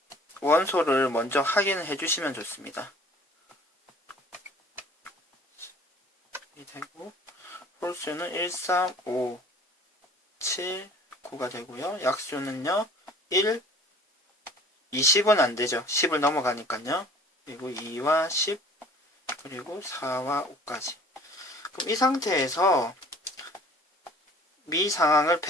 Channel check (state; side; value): normal; both; correlation 0.49